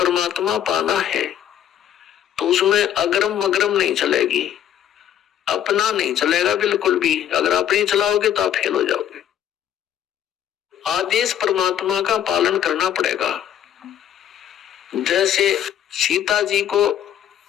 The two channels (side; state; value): right; quieter; 10.3 dB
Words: पाना है तो उसमें अगरम मगरम नहीं चलेगी, अपना नहीं चलेगा बिल्कुल भी। अगर अपनी चलाओगे तो आप फेल हो जाओगे। आदेश परमात्मा का पालन करना पड़ेगा। जैसे सीता जी को